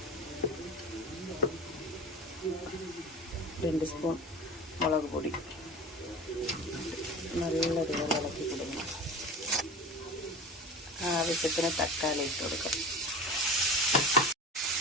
രണ്ട് സ്പൂൺ മുളക് പൊടി നല്ലതുപോലെ ഇളക്കി കൊടുക്കണം. ആവശ്യത്തിന് തക്കാളി ഇട്ട് കൊടുക്കാം.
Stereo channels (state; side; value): normal; both; correlation 0.33